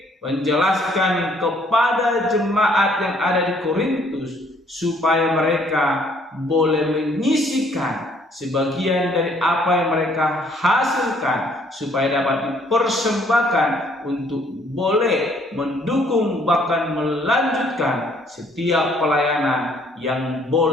menjelaskan kepada jemaat yang ada di Korintus supaya mereka boleh menyisihkan sebagian dari apa yang mereka hasilkan, supaya dapat dipersembahkan untuk boleh mendukung bahkan melanjutkan setiap pelayanan yang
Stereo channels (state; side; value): normal; both; correlation 0.63